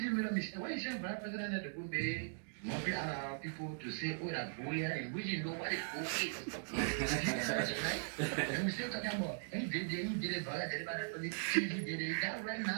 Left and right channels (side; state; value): left; silent; digital silence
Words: made a mistake, why you say Vice President at the good day, maybe allow people to say, oh, that boy, and we didn't know what it is. Right? And we still talking about, he did it, but citizen did it. That right